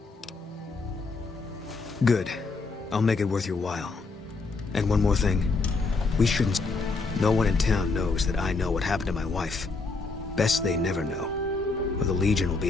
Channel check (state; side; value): quieter; right; 3.9 dB